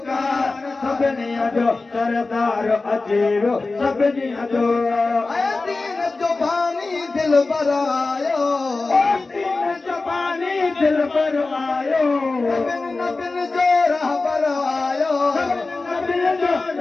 सभिनी जो सरदार अचेवो सभिनी जो दीन जो पानी दिल पर आयो दीन जो पानी दिल पर आयो नबिन जो राह पर आयो नबिन जो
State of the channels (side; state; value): right; quieter; 3.6 dB